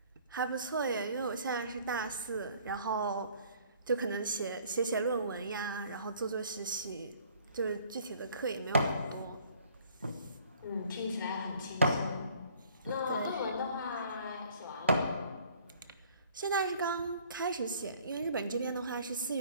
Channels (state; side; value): inverted; both; correlation -0.56